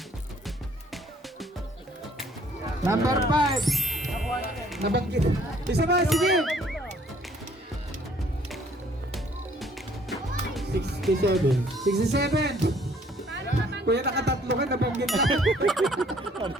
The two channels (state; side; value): normal; both; correlation 0.60